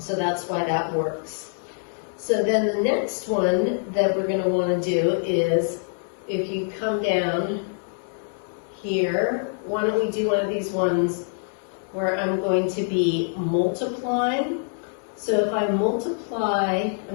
that's why that works. So then the next one that we're going to want to do is, if you come down here, why don't we do one of these ones where I'm going to be multiplying. So if I multiply,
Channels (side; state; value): right; silent; 62 dB below the other